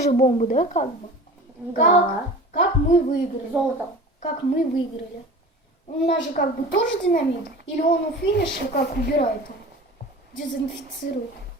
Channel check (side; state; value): both; normal; correlation 0.38